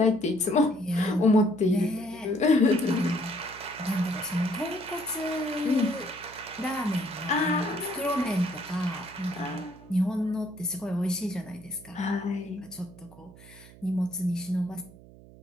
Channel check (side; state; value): right; noise; hum, 21 dB below the sound